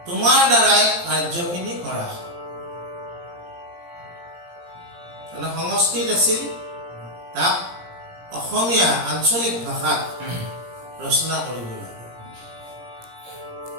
তোমাৰ দ্বাৰাই কাৰ্যখিনি কৰা হ'ল। সংস্কৃত আছিল, তাক অসমীয়া আঞ্চলিক ভাষাত ৰচনা কৰিব লাগে।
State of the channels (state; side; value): late; left; 17 ms